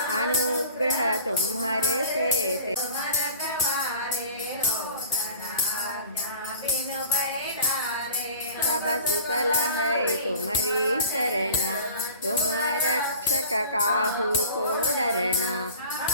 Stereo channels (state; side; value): inverted; both; correlation -0.43